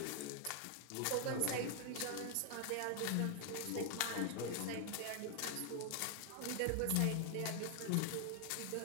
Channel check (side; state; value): both; different; correlation 0.00